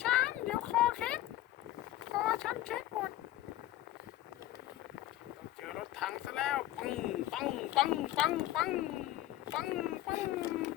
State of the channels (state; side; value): quieter; right; 14.5 dB